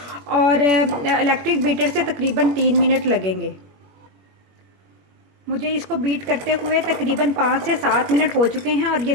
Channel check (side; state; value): left; late; 21 ms